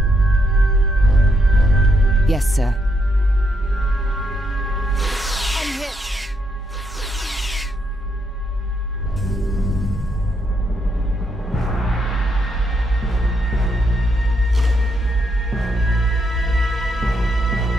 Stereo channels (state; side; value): normal; both; correlation 0.78